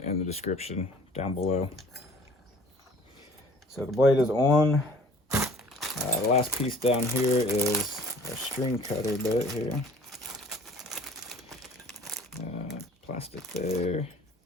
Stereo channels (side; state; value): both; normal; correlation 0.51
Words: in the description down below. So the blade is on. The last piece down here is our string cutter bit here. Plastic there,